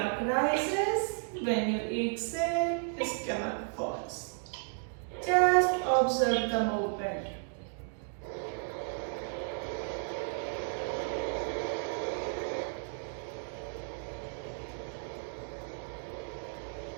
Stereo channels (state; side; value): silent; left; 55 dB below the other